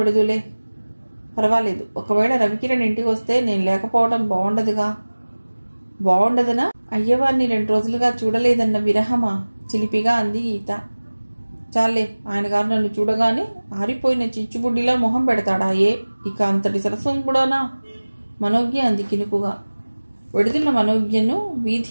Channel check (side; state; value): both; inverted; correlation -1.00